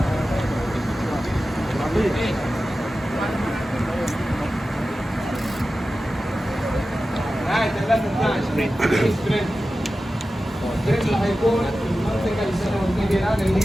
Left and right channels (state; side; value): normal; both; correlation 0.94